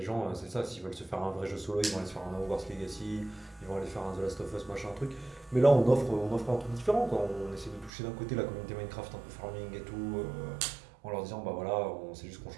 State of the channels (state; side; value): drops out; left; at 7.9 s